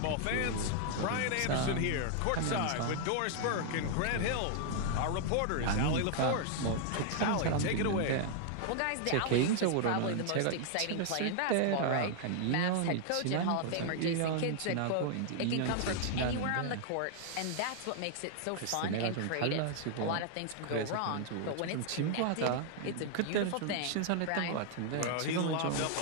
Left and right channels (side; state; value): both; different; correlation 0.00